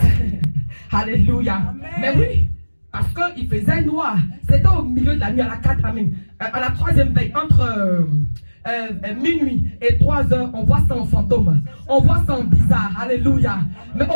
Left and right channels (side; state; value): both; inverted; correlation -1.00